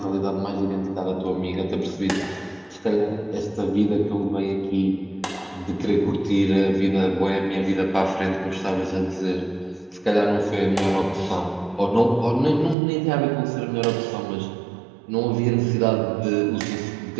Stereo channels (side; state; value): left; drops out; at 12.8 s